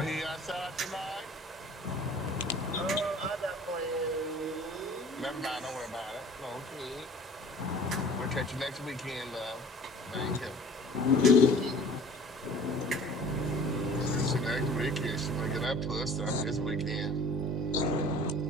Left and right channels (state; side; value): normal; both; correlation 0.47